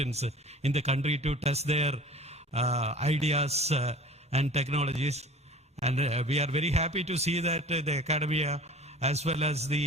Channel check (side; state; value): both; normal; correlation 0.42